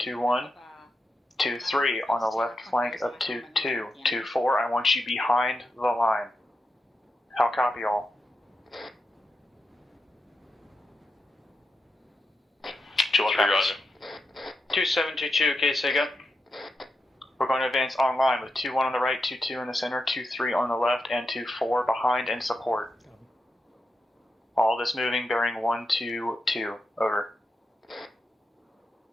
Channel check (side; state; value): both; normal; correlation 0.87